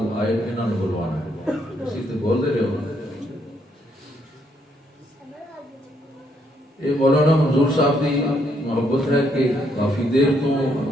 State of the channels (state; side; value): normal; both; correlation 0.73